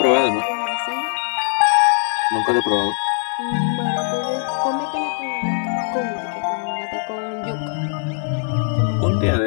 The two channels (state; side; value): silent; right; 64 dB below the other